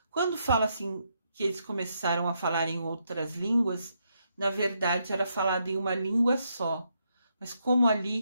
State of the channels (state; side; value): inverted; both; correlation -0.79